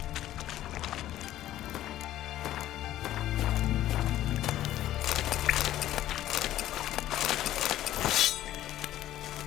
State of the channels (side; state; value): right; quieter; 13.5 dB